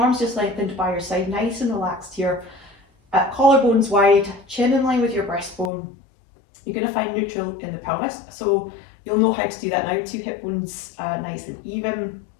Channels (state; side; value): drops out; right; at 5.7 s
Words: just lengthened by your side, nice and relaxed here. Collarbones wide, chin in line with your breastbone. You're going to find neutral in the pelvis, so you'll know how to do that now. 2 hip bones nice and even.